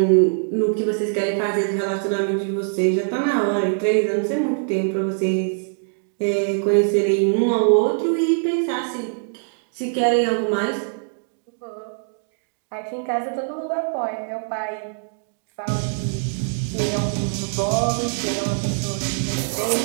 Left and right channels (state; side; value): silent; left; digital silence